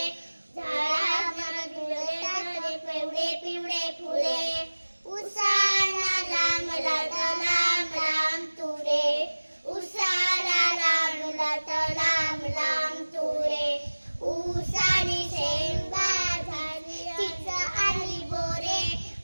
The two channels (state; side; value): inverted; both; correlation -1.00